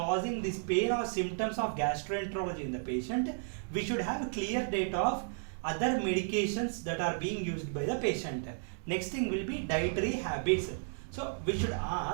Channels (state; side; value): silent; left; digital silence